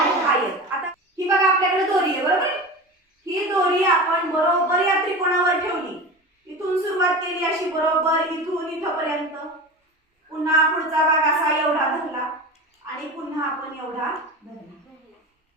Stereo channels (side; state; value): both; normal; correlation 0.30